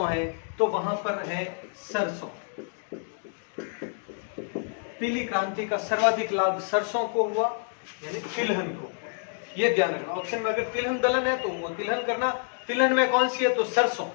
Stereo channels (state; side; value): silent; right; digital silence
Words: है, तो वहां पर है सरसों। पीली क्रांति का सर्वाधिक लाभ सरसों को हुआ, यानी तिलहन को, ये ध्यान रखना। ऑप्शन में अगर तिलहन दलहन है तो वो तिलहन करना, तिलहन में कौन सी है तो सरसों,